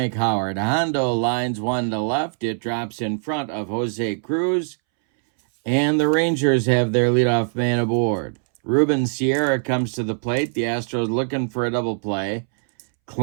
Howard. Hondo lines one to left. It drops in front of Jose Cruz. And the Rangers have their leadoff man aboard. Ruben Sierra comes to the plate. The Astros looking for a double play.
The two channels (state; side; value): silent; left; 64 dB below the other